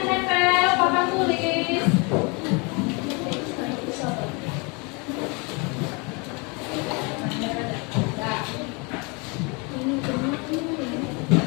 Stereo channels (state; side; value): quieter; right; 30.5 dB